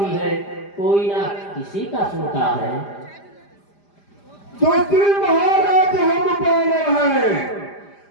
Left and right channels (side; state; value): right; late; 5.0 ms